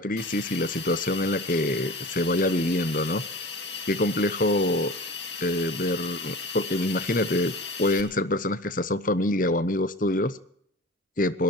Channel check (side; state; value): both; normal; correlation 0.37